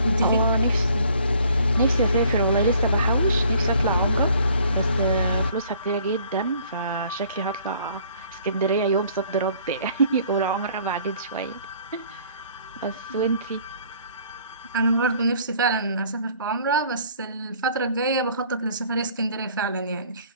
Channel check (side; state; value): both; inverted; correlation -0.57